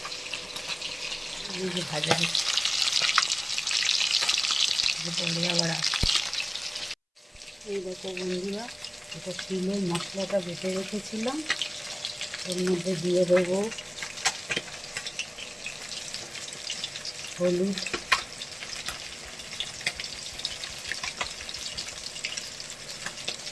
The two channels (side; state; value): both; identical; correlation 1.00